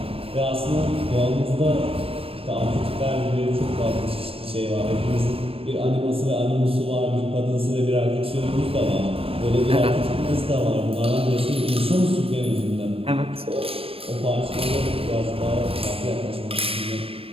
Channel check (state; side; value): late; left; 0.28 ms